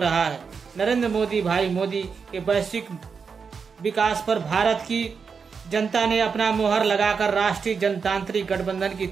है। नरेंद्र मोदी भाई मोदी के वैश्विक विकास पर भारत की जनता ने अपना मुहर लगाकर राष्ट्रीय जनतांत्रिक गठबंधन की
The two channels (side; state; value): left; quieter; 5.7 dB